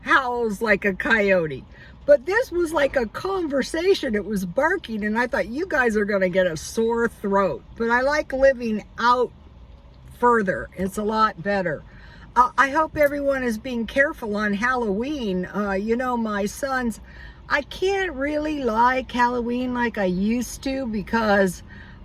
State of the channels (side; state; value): both; identical; correlation 1.00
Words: like a coyote. But this was like a conversation. It was barking, and I thought, you guys are going to get a sore throat. But I like living out further. It's a lot better. I hope everyone is being careful on Halloween. You know, my sons, I can't really like Halloween like I used to, because